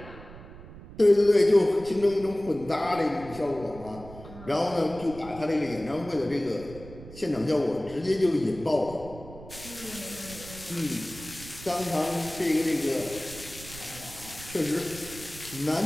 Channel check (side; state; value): right; noise; rumble, 16 dB below the sound